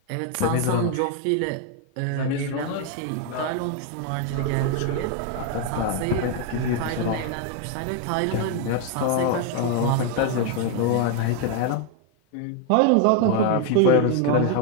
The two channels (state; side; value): different; both; correlation 0.01